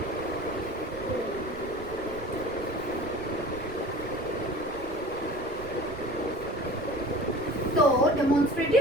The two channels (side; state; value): right; noise; rumble, 15 dB below the sound